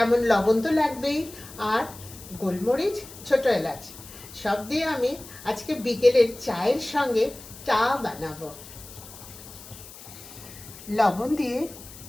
লবণ তো লাগবেই, আর গোলমরিচ, ছোট এলাচ, সব দিয়ে আমি আজকে বিকেলের চায়ের সঙ্গে চা বানাবো। লবণ দিয়ে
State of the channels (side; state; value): left; noise; hiss, 17 dB below the sound